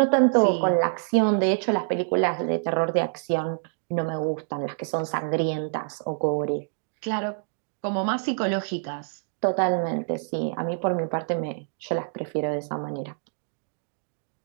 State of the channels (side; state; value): left; silent; digital silence